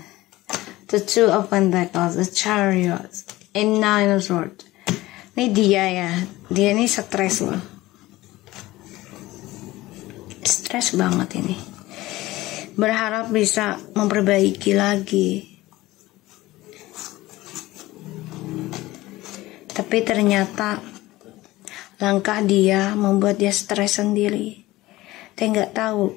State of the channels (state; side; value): quieter; right; 18.1 dB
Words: the Two of Pentacles, the Chariot, and Nine of Swords. Ini dia, ya, dia ini stres loh, stres banget ini. Berharap bisa memperbaiki lagi, tapi ternyata langkah dia membuat dia stres sendiri. Dia nggak